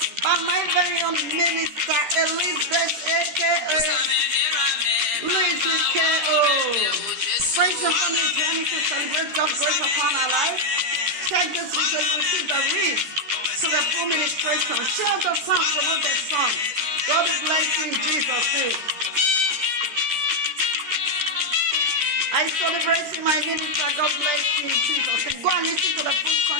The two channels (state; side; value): late; left; 13 ms